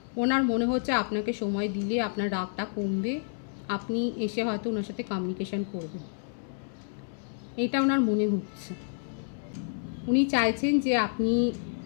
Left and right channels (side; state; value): right; silent; 58 dB below the other